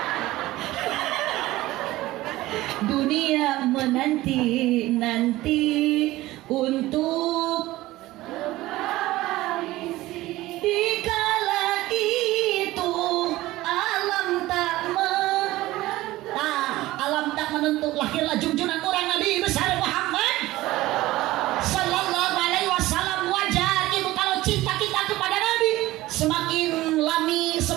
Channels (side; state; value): left; quieter; 17.5 dB